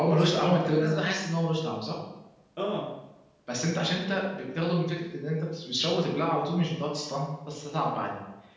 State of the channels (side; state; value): both; identical; correlation 1.00